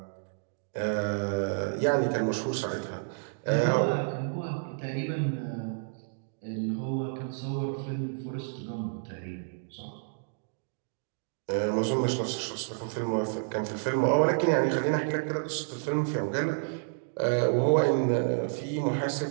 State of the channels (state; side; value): silent; left; digital silence